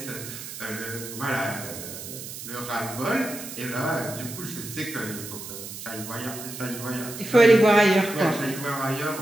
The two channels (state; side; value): noise; right; hiss, 10 dB below the sound